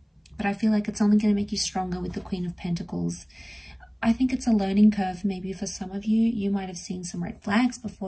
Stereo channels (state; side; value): identical; both; correlation 1.00